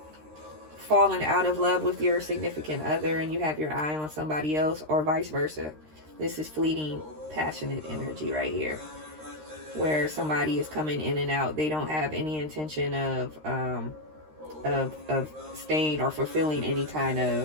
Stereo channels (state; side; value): late; left; 13 ms